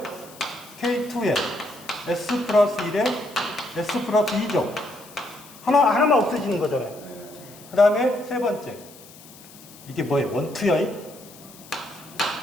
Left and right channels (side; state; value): left; noise; hiss, 21 dB below the sound